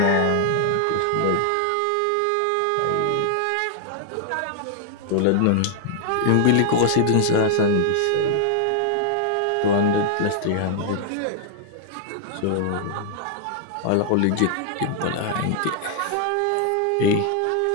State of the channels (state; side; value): different; both; correlation 0.00